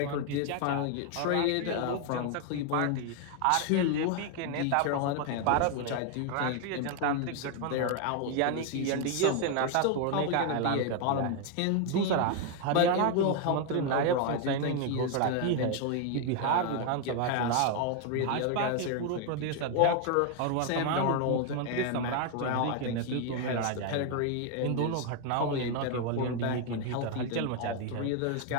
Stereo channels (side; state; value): both; different; correlation 0.01